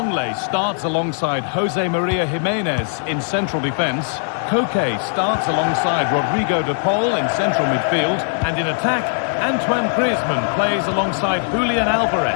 starts alongside Jose Maria Jimenez in central defence. Koke starts alongside Rodrigo de Paul in central midfield. And in attack, Antoine Griezmann plays alongside Julian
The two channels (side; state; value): right; silent; digital silence